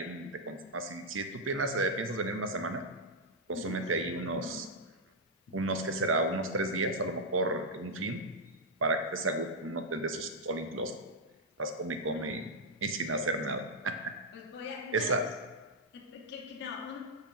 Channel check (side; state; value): both; normal; correlation -0.03